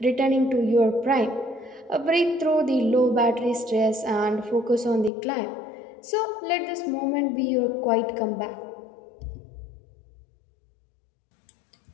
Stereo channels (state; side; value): drops out; right; at 5.1 s